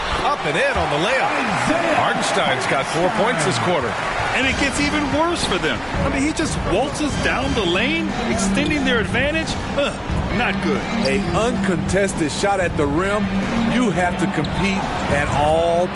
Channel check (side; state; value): both; identical; correlation 1.00